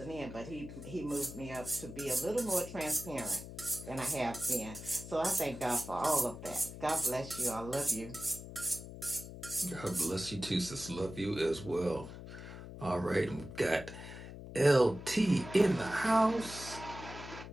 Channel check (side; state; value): left; noise; hum, 12 dB below the sound